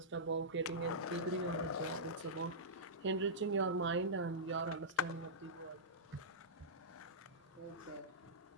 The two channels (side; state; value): both; normal; correlation -0.14